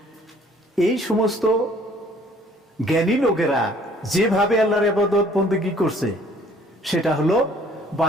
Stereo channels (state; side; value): normal; both; correlation 0.57